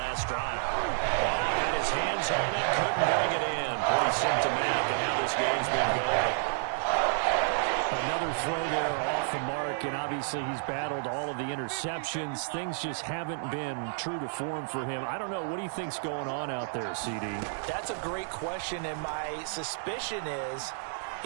drive. Oh, had his hands on it, couldn't bring it in. Pretty symptomatic of how this game's been going. Another throw there off the mark, and obviously he's battled all of the interceptions. Things just haven't been true to form for him. I don't know. What do you think's going on out there, CD? That's a great question, and my suspicion is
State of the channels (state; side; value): silent; left; digital silence